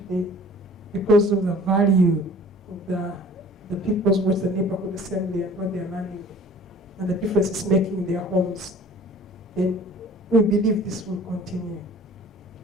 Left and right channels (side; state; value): both; normal; correlation 0.48